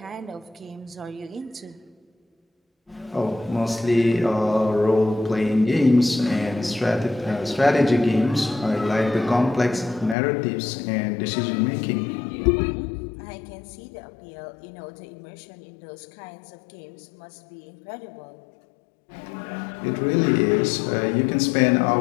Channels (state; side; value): drops out; right; at 10.2 s